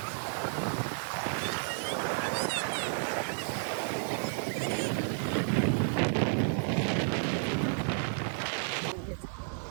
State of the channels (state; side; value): silent; left; 57 dB below the other